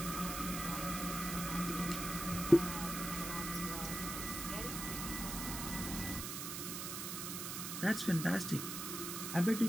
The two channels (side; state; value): right; noise; hiss, 5 dB below the sound